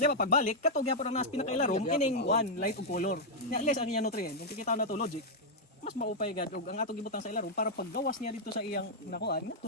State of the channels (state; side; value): normal; both; correlation -0.04